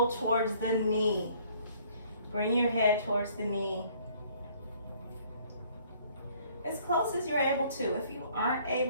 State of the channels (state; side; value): inverted; both; correlation -0.60